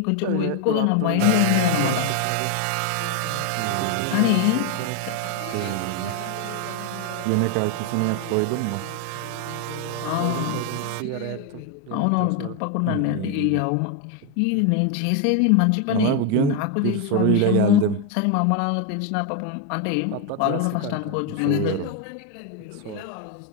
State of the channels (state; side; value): different; both; correlation 0.01